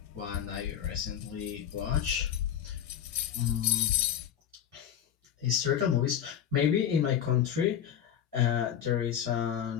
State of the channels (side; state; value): right; quieter; 9.7 dB